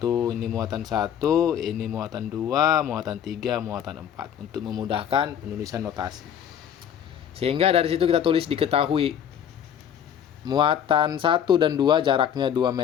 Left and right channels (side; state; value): right; quieter; 9.2 dB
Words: ini muatan 1, ini muatan 2, muatan 3, muatan 4 untuk memudahkan penulisan notasi. Sehingga dari situ kita tulis diketahui muatan 1 dan 2 jaraknya 2